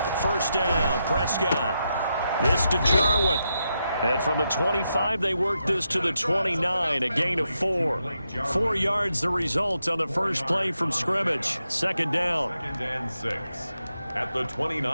First down, Prescott. This to Jarwin. And from the 25, they work this to the 29, a gain of 4. 4 yards the result on the first play from scrimmage. Second down. 2nd and 6 at the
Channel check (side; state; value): both; inverted; correlation -0.84